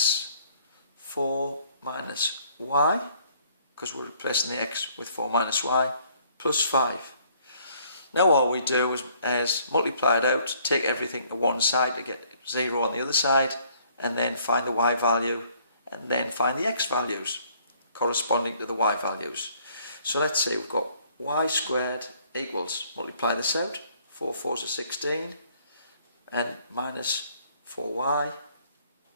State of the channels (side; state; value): both; inverted; correlation -0.62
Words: 4 minus y, because we're replacing the x with 4 minus y, plus 5. Now all we do is multiply it out, take everything to one side to get 0 on the other side, and then find the y value, and then find the x values corresponding to the y values. So let's say we've got y squared equals, multiply this out, 4 4s are 16, and minus 4y